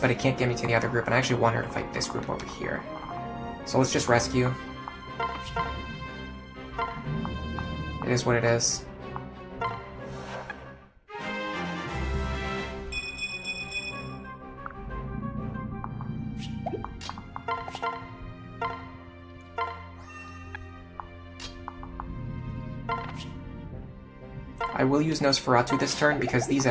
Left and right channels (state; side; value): identical; both; correlation 1.00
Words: but it can't get me to the other group, and I actually want her to fight this group over here. So let's just rescue. It is what it is. I will use Nosferatu this turn because these